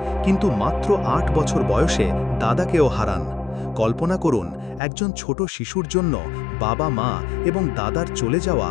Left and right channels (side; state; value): right; drops out; at 4.8 s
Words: কিন্তু মাত্র ৮ বছর বয়সে দাদাকেও হারান। কল্পনা করুন, একজন ছোট শিশুর জন্য বাবা, মা এবং দাদার চলে যাওয়া